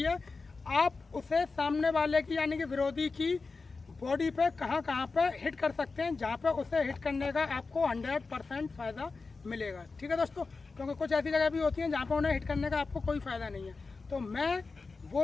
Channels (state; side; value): quieter; right; 4.1 dB